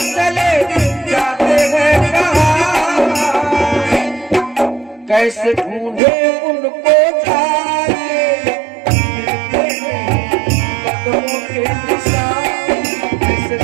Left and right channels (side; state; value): left; drops out; at 6.0 s